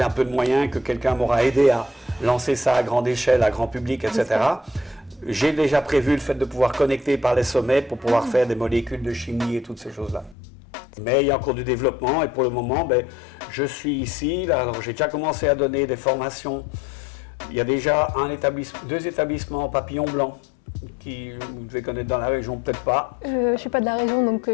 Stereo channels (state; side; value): drops out; right; at 10.4 s